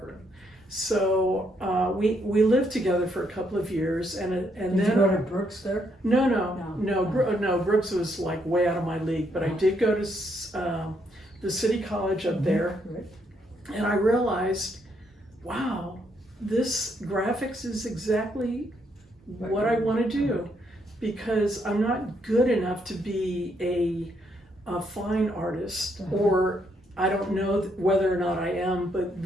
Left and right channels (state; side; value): normal; both; correlation 0.74